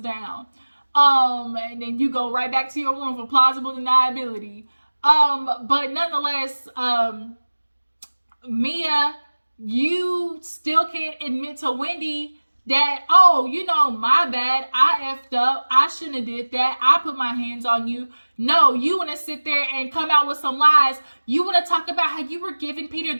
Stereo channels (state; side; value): inverted; both; correlation -1.00